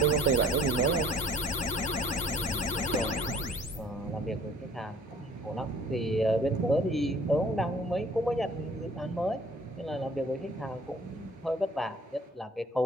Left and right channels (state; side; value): normal; both; correlation 0.53